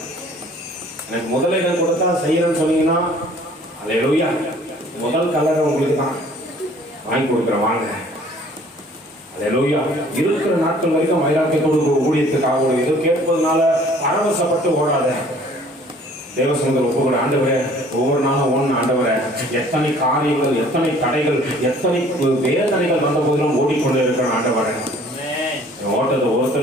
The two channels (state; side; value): normal; both; correlation 0.54